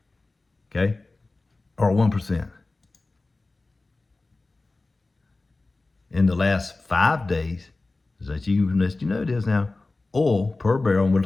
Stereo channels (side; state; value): right; quieter; 3.3 dB